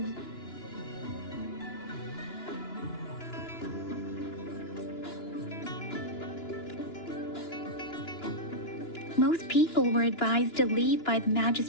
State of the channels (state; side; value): late; right; 2.9 ms